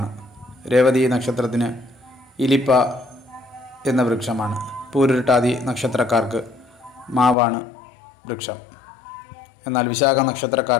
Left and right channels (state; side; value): drops out; right; at 7.4 s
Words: രേവതി നക്ഷത്രത്തിന് ഇലിപ്പ എന്ന വൃക്ഷമാണ്. പൂരുരുട്ടാതി നക്ഷത്രക്കാർക്ക് മാവാണ് വൃക്ഷം. എന്നാൽ വിശാഖ